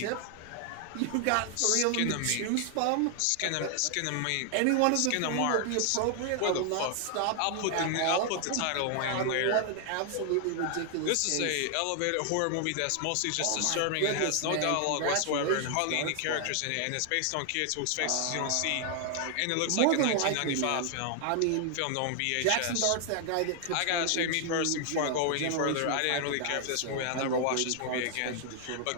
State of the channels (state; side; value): different; both; correlation 0.00